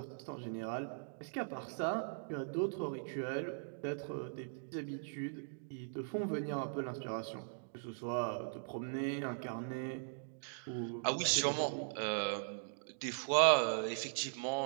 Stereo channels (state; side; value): silent; left; digital silence